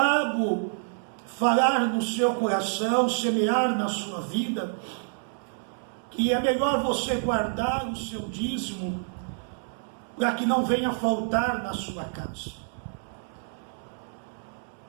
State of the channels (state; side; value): silent; left; digital silence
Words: falar no seu coração, semear na sua vida, que é melhor você guardar o seu dízimo para que não venha faltar na sua casa.